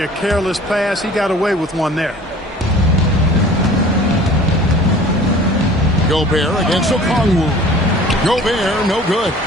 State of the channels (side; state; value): both; normal; correlation 0.46